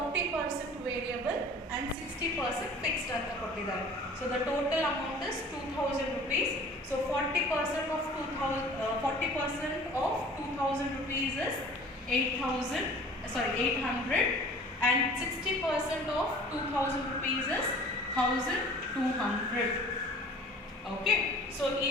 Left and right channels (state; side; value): normal; both; correlation 0.46